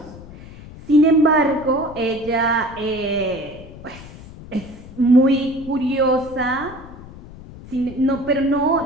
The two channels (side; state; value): left; noise; rumble, 17 dB below the sound